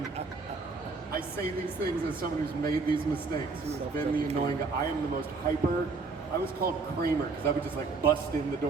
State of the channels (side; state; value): left; quieter; 4.2 dB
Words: I say these things as someone who's made these mistakes, who has been the annoying guy. I am the most hyper. I was called Kramer because I would just bust in the